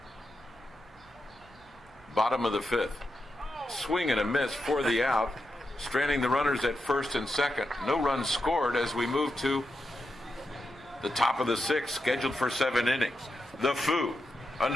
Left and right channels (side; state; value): both; normal; correlation 0.87